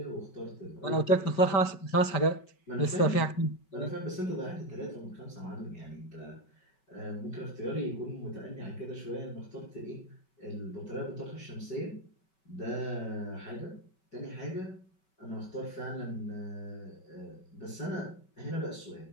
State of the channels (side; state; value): right; late; 5.3 ms